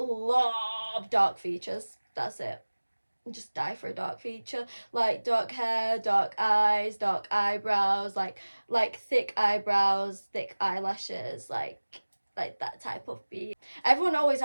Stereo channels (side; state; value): both; inverted; correlation -1.00